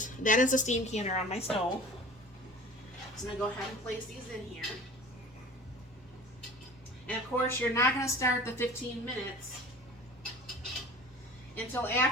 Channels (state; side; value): normal; both; correlation 0.41